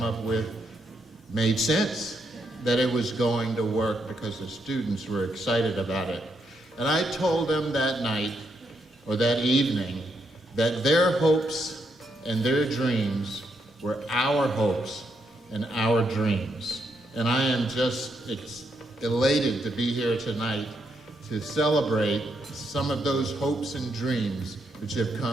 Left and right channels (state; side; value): normal; both; correlation 0.78